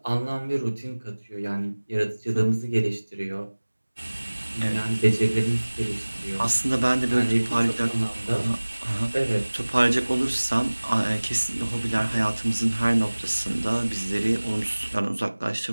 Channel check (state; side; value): inverted; both; correlation -1.00